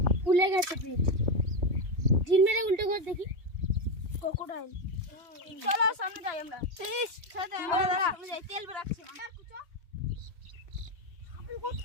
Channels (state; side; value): late; left; 3.1 ms